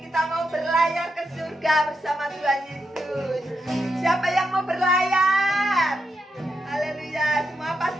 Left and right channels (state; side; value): normal; both; correlation 0.84